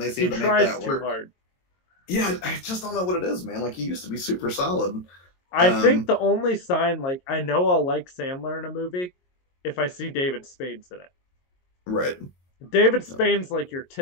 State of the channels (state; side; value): late; right; 22 ms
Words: they seem to make that work. Too hard. Yeah, I just don't know what it is, man. Like he used to be super solid. I think the only sign, like I know I'll like Sandler in a movie if I see David Spade's in it. Right. David Spade's like your